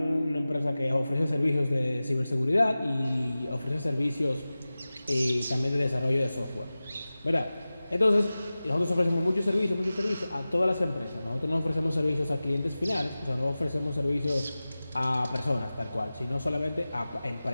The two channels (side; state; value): both; inverted; correlation -0.97